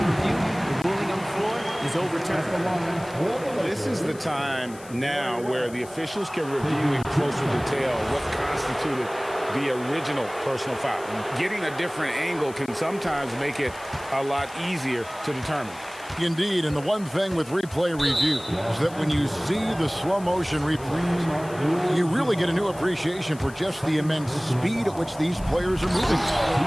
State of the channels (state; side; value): noise; left; hiss, 20 dB below the sound